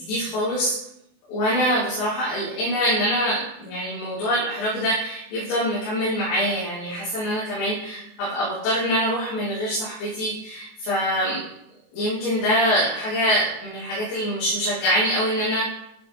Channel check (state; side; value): late; right; 23 ms